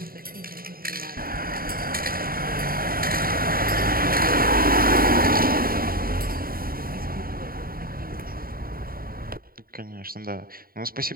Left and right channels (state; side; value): late; left; 0.43 ms